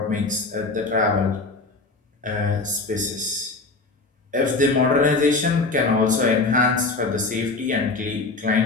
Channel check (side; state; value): right; quieter; 3.6 dB